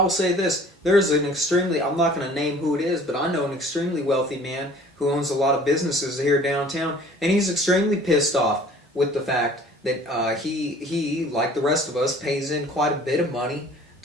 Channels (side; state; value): both; normal; correlation 0.50